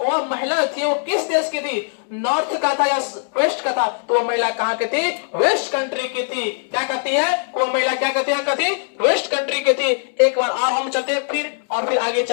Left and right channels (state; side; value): silent; right; 65 dB below the other